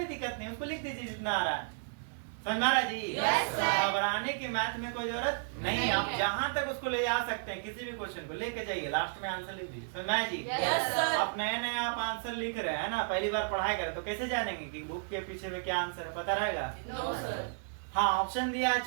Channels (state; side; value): silent; left; 56 dB below the other